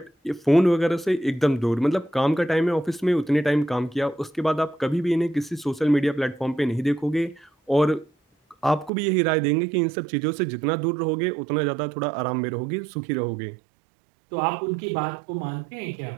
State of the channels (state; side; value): drops out; left; at 8.9 s